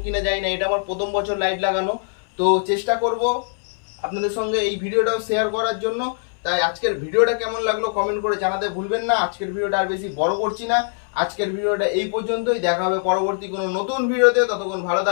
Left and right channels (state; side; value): silent; right; 64 dB below the other